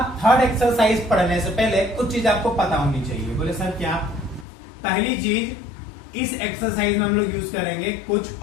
थर्ड एक्सरसाइज पढ़ने से पहले कुछ चीज आपको पता होनी चाहिए। बोले सर क्या? पहली चीज, इस एक्सरसाइज में हम लोग यूज करेंगे कुछ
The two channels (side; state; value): right; drops out; at 4.5 s